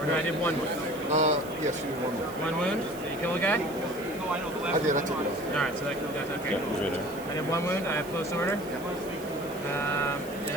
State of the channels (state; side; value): noise; right; hiss, 18 dB below the sound